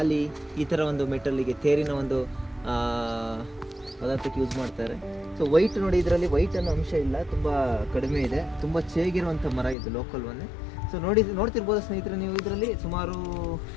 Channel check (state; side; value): drops out; right; at 9.8 s